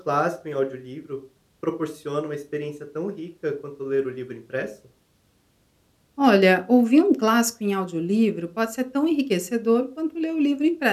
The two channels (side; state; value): both; identical; correlation 1.00